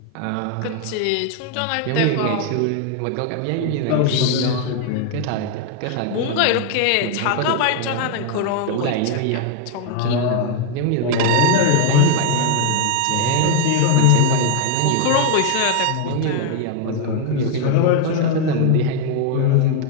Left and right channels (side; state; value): both; different; correlation 0.01